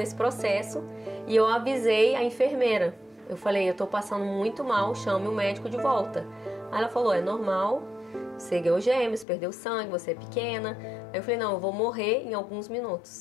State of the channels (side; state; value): right; drops out; at 9.2 s